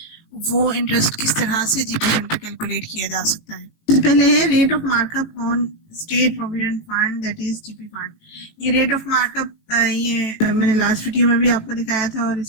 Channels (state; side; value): late; right; 18 ms